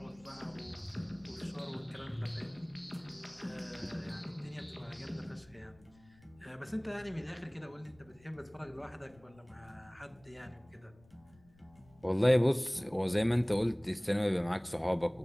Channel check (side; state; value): left; noise; rumble, 27 dB below the sound